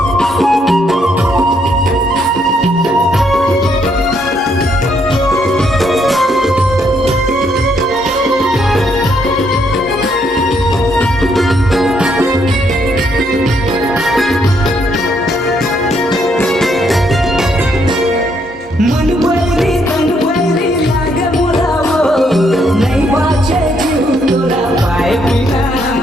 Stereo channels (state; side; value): normal; both; correlation 0.73